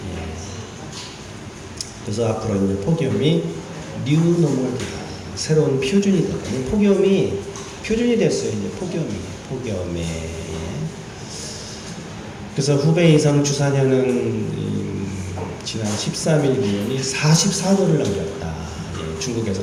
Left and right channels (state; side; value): identical; both; correlation 1.00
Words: 그래서 앞으로 이제 폭염이 뉴노멀이다. 새로운 표준이 됐거든요. 폭염이 표준이 됐어요. 이제 폭염에. 그래서 후베이 이상 주사년은 지난 13일 기온이 44도를 넘겼다. 중국에서